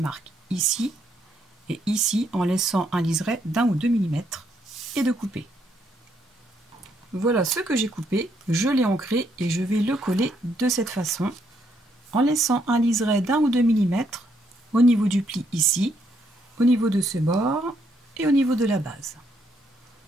ici et ici, en laissant un liseré d'1 ou 2 mm et de couper. Voilà ce que j'ai coupé, je l'ai ancré et je vais le coller de cette façon, en laissant un liseré d'1 ou 2 mm au niveau du pli ici, au niveau de ce bord et au niveau de la base.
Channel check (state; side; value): normal; both; correlation 0.73